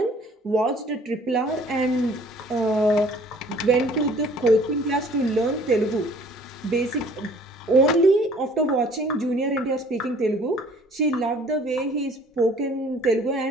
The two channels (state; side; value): normal; both; correlation 0.54